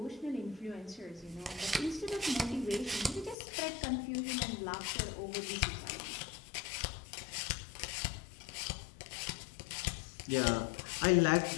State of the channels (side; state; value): right; drops out; at 3.4 s